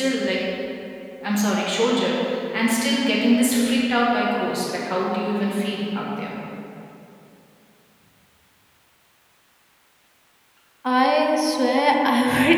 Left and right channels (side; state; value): both; identical; correlation 1.00